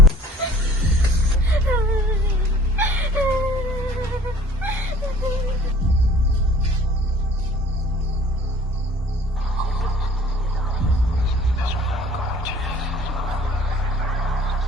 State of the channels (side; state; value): both; normal; correlation 0.51